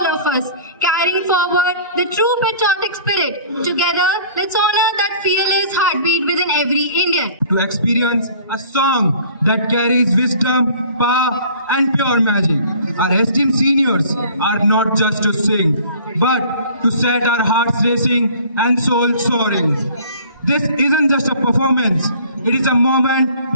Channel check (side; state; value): both; inverted; correlation -0.50